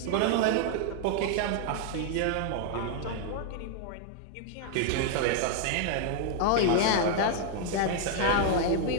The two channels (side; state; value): both; different; correlation 0.00